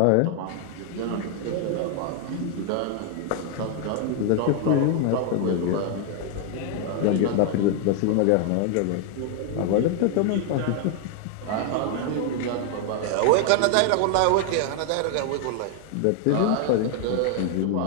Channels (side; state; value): both; different; correlation 0.00